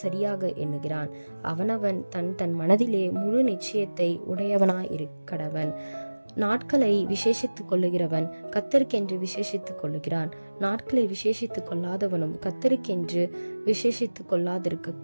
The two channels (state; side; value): inverted; both; correlation -1.00